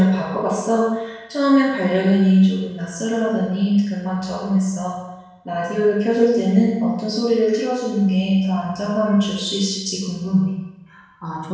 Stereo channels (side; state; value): both; identical; correlation 1.00